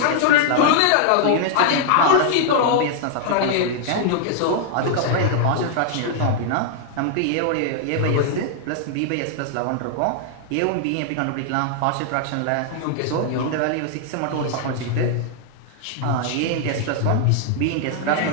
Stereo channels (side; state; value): both; different; correlation 0.00